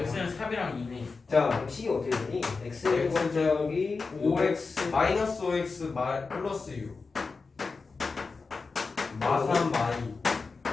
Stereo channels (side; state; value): right; quieter; 4.4 dB